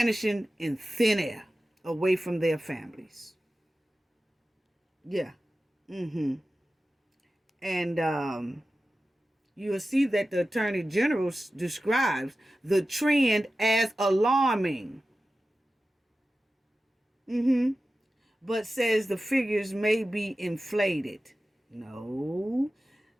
in thin air, away from their families. Yeah. And you'll see that the Attorney General describes the trend as alarming. But says the figures may be inflated. No.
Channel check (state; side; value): normal; both; correlation 0.94